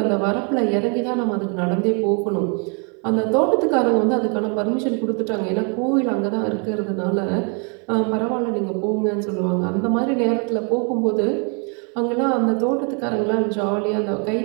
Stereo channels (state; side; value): quieter; left; 36.7 dB